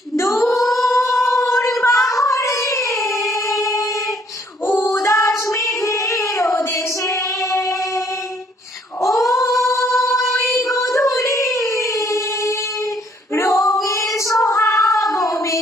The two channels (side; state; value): both; normal; correlation 0.65